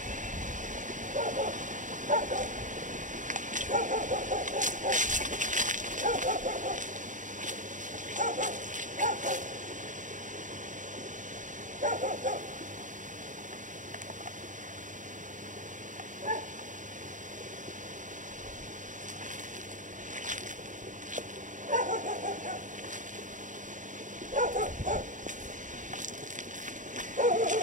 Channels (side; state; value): left; late; 0.37 ms